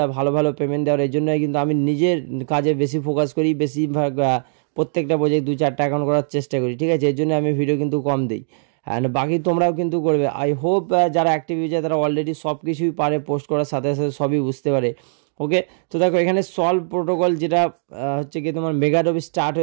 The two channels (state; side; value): silent; left; digital silence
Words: ভালো ভালো পেমেন্ট দেওয়ার, এই জন্যই কিন্তু আমি নিজের কাজে বেশি ফোকাস করি, বেশিরভাগ প্রত্যেকটা প্রজেক্ট 2-4টা অ্যাকাউন্ট করার চেষ্টা করি, ঠিক আছে। এর জন্য আমি ভিডিও কিন্তু কম দিই অ্যান্ড বাকি তোমরাও কিন্তু করবে। আই হোপ যারা অ্যাক্টিভ ইউজার তারা অলরেডি সব কিছুই পারে, পোস্ট করার সাথে সাথে সবই বুঝতে পারে। ওকে, তো দেখো এখানে সলভ প্রোটোকল যেটা হচ্ছে কি তোমার মেগা ড্রপ স্টার্ট